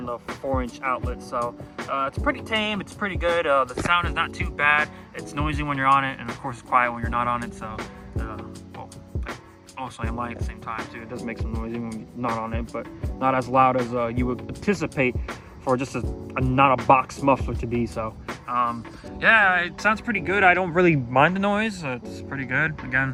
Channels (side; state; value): both; identical; correlation 1.00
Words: the 4-inch outlet. So it's pretty tame, it's pretty good. The sound is not too bad. It's noisy when you're on it, and of course it's quiet when you're not on it. So well, also I'm lying at the same time too. It does make some noise when you're not on it, but not as loud as you would anticipate for just not a box muffler to be. So yeah, it sounds pretty good. I don't really mind the noise. It's pretty good. Again,